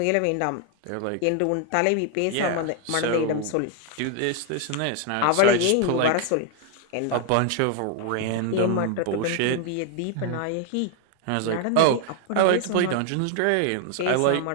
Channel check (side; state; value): both; different; correlation 0.00